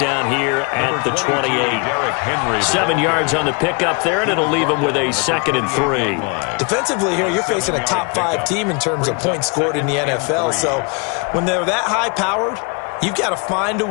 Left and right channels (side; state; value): right; quieter; 33.1 dB